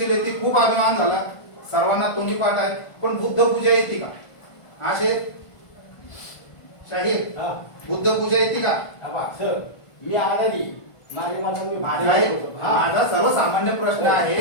येते, खूप अभिमान झाला, सर्वांना तोंडी पाठ आहे. पण बुद्ध पूजा येते का? असे शाहीर बुद्ध पूजा येते का? मी आनंदी माझा सर्वसामान्य प्रश्न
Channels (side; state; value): right; late; 1.5 ms